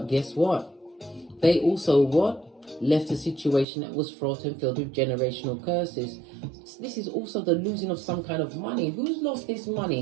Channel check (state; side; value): drops out; left; at 3.7 s